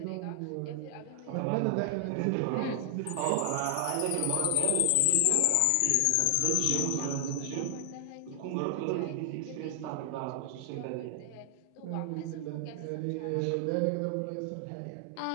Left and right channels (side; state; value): both; different; correlation 0.00